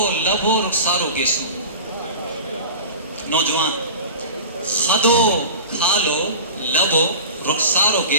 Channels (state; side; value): inverted; both; correlation -0.35